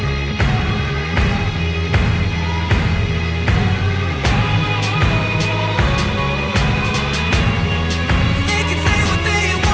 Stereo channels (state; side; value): identical; both; correlation 1.00